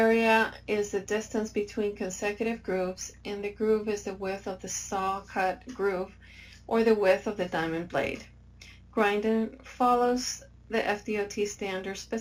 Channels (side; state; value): both; identical; correlation 1.00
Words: is the distance between consecutive grooves, and the groove is the width of the saw cut groove or the width of the diamond blade. Grinding follows the FDOT standard